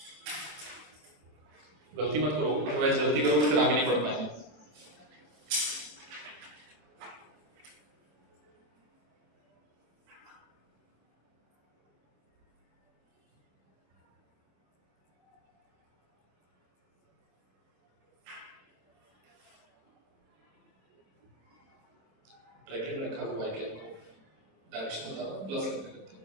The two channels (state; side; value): late; left; 26 ms